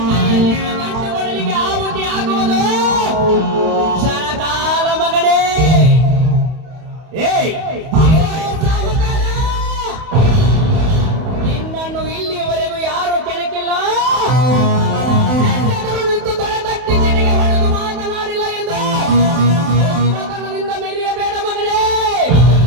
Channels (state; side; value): late; left; 31 ms